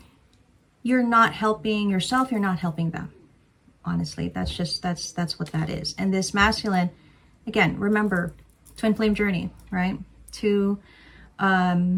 you're not helping yourself, you're not helping them. Honestly, that's what that is. And this masculine, again, remember, twin flame journey, right? Two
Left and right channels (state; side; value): identical; both; correlation 1.00